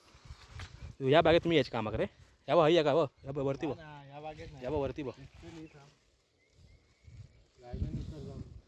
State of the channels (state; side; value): identical; both; correlation 1.00